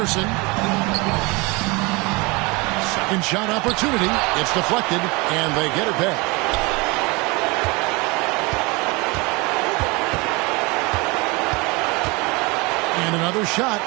Second shot opportunity. It's deflected, and they get it back. And another shot.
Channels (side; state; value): left; quieter; 26.1 dB